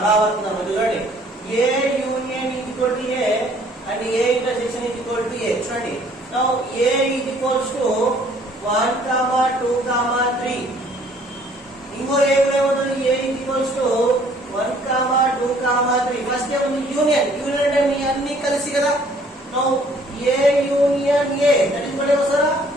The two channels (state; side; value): normal; both; correlation 0.59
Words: ధర్మం చూడండి A union equal to A and A intersection equal to A. చూడండి now A equals to 1, 2, 3. ఇంకో ఏ ఏమవుతుంది? ఏ ఈక్వల్స్ టు 1, 2, 3. ఫస్ట్ ఏముంది? యూనియన్. యూనియన్ అంటే మీ అన్ని కలిసి కదా. Now A union A that is what వస్తారా?